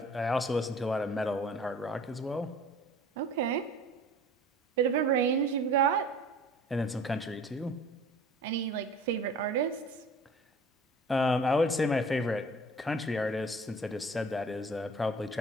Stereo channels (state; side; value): normal; both; correlation 0.46